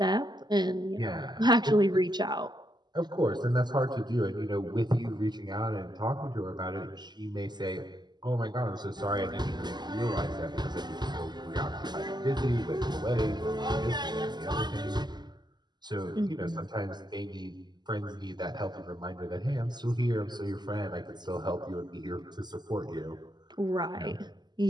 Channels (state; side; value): late; left; 0.21 ms